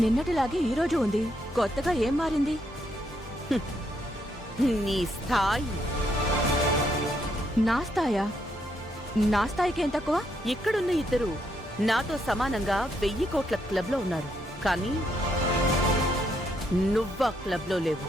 నిన్నటిలాగే ఈ రోజు ఉంది, కొత్తగా ఏం మారింది? నీ స్థాయి. నా స్థాయా? నా స్థాయికి ఏం తక్కువ? ఇక్కడున్న ఇద్దరు నాతో సమానంగా 1000 కోట్ల క్లబ్లో ఉన్నారు, కానీ నువ్వా క్లబ్లో లేవు.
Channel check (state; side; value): normal; both; correlation 0.76